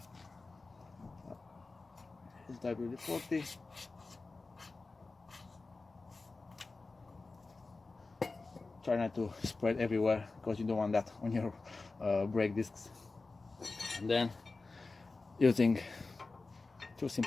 It's WD-40. try not to spread everywhere because you don't want that on your brake discs. And then using two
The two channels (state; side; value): quieter; right; 3.7 dB